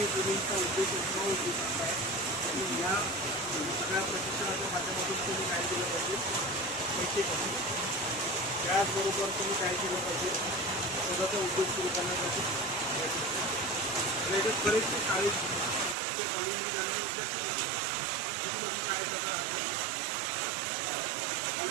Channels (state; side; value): drops out; left; at 16.0 s